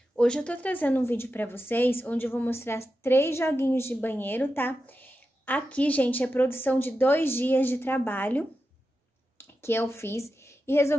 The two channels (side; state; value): both; normal; correlation 0.90